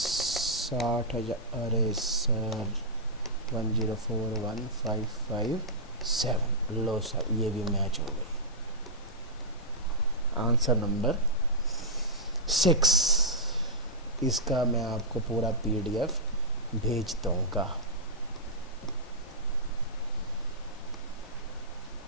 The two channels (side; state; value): both; normal; correlation -0.11